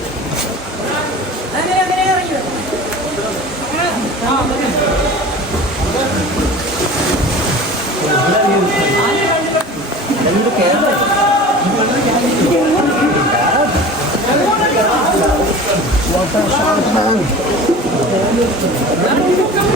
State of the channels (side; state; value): both; normal; correlation 0.38